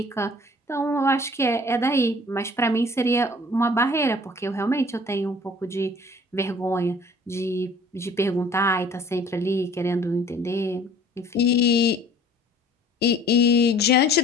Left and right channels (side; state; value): both; normal; correlation 0.51